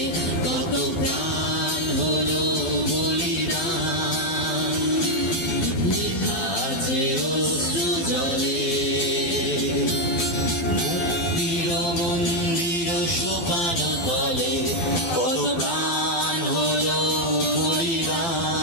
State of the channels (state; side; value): late; right; 12 ms